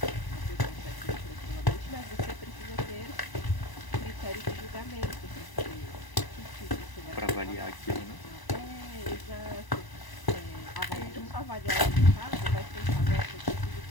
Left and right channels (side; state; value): right; late; 1.0 ms